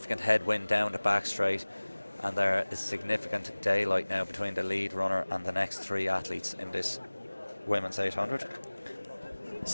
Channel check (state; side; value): inverted; both; correlation -1.00